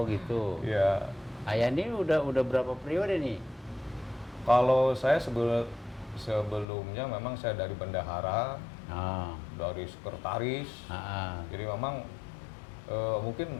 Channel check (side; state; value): right; drops out; at 6.7 s